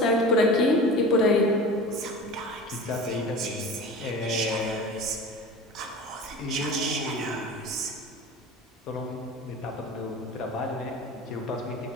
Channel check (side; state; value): both; normal; correlation 0.35